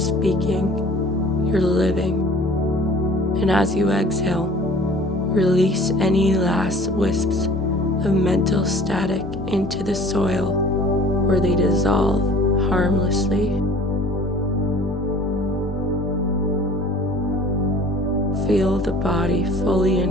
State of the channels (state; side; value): normal; both; correlation 0.48